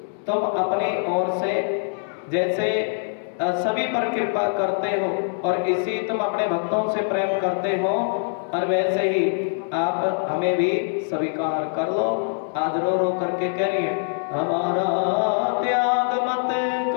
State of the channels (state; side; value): silent; right; digital silence